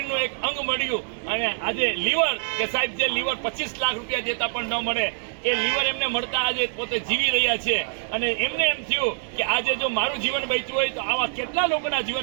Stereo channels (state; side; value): silent; left; digital silence